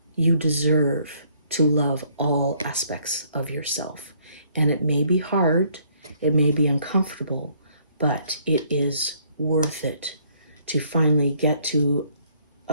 You deserve to love all aspects of yourself. And it may be hard, it may be uncomfortable, but it is worth it to finally get to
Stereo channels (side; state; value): both; inverted; correlation -0.65